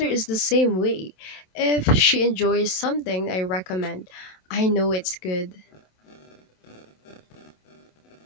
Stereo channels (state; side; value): late; right; 27 ms